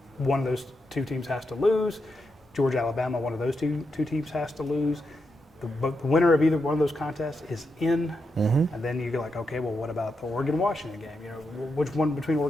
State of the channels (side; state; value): both; normal; correlation 0.85